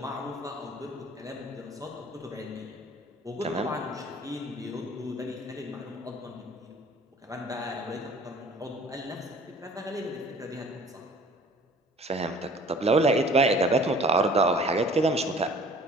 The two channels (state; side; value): normal; both; correlation 0.50